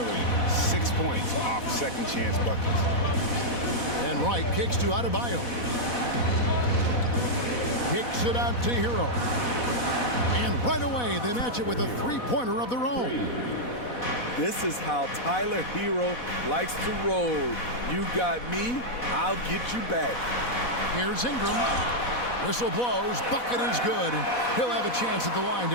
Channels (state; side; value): late; right; 4.1 ms